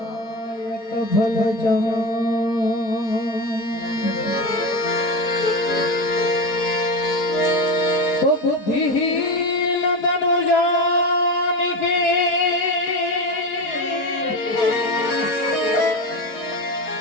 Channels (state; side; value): late; right; 4.7 ms